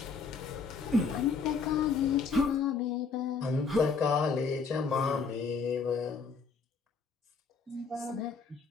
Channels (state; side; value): quieter; right; 5.0 dB